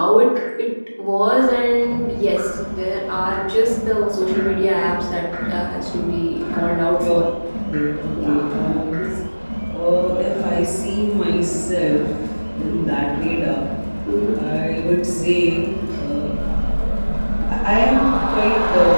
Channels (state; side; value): inverted; both; correlation -1.00